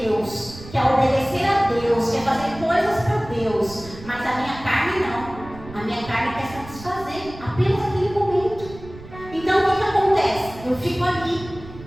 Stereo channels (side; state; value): right; noise; rumble, 16 dB below the sound